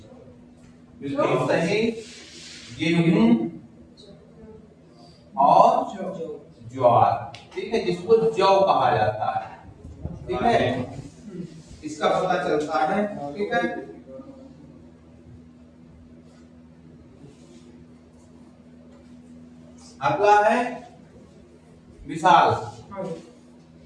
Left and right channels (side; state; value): both; identical; correlation 1.00